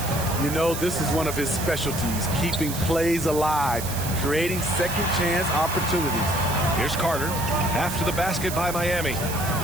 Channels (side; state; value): right; noise; hiss, 8 dB below the sound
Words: You know, this is one of his specialties, keeping plays alive, creating second chance opportunities. Here's Carter, after the basket by Miami.